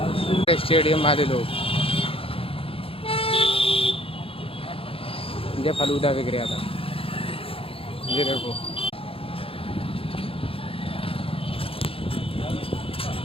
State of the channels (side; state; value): right; late; 0.27 ms